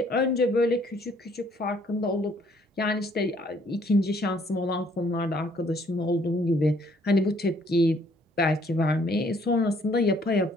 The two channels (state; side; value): normal; both; correlation 0.63